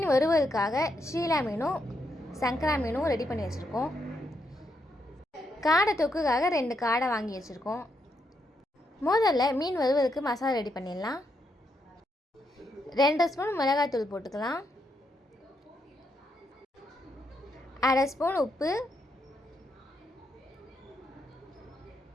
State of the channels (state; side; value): normal; both; correlation 0.79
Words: வறுவலுக்காக ஷீலா மீனும் சங்கரா மீனும் ரெடி பண்ணி வச்சுருக்கோம். காடை தொக்குக்காக 2 காடை வாங்கி வச்சுருக்கோம். முதல்ல மீன் வறுவலுக்கு மசாலா ரெடி பண்ணிடலாம். 2 ஸ்பூன் மிளகாய்த்தூள் போட்டுக்கலாம். 1/2 ஸ்பூன் உப்பு,